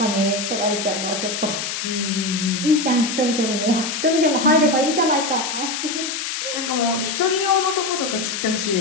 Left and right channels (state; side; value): noise; left; hiss, 4 dB below the sound